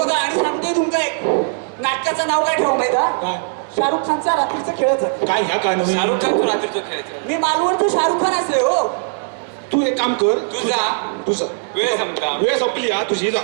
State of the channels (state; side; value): silent; left; digital silence